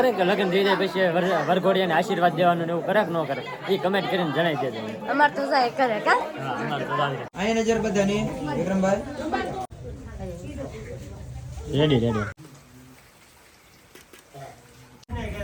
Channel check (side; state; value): both; identical; correlation 1.00